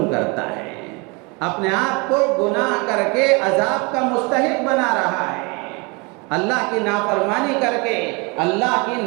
کرتا ہے، اپنے آپ کو گناہ کر کے عذاب کا مستحق بنا رہا ہے، اللہ کی نافرمانی کر کے اللہ کی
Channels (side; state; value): left; quieter; 28.9 dB